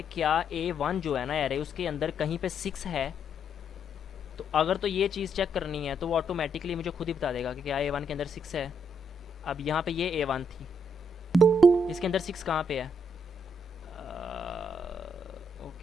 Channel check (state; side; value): normal; both; correlation 0.74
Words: क्या A1 जो है ना एरे, उसके अंदर कहीं पे 6 है। तो अगर तो ये चीज़ चेक करनी है तो वो ऑटोमेटिकली मुझे खुद ही बता देगा कि क्या A1 के अंदर 6 है। अब यहाँ पे ये A1 थी, इसके अंदर 6 कहाँ पे है?